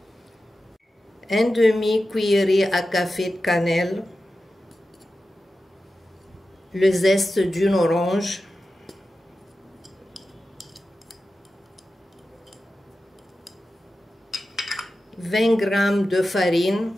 Un demi-cuillerée à café de cannelle, le zeste d'une orange, 20 g de farine,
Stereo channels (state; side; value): normal; both; correlation 0.92